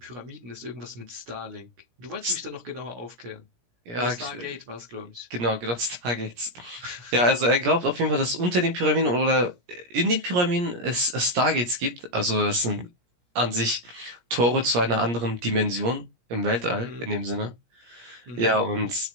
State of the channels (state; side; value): late; left; 17 ms